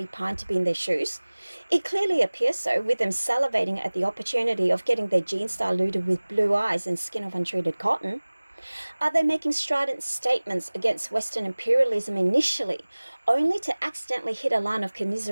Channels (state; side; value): inverted; both; correlation -1.00